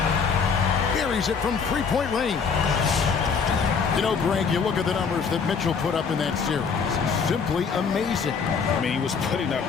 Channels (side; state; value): right; quieter; 5.8 dB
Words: Buries it from 3-point range. You know, Greg, you look at the numbers that Mitchell put up in that series. Simply amazing. I mean, he was putting up